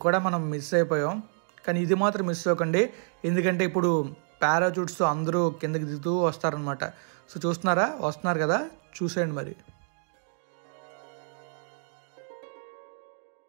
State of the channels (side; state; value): left; silent; 59 dB below the other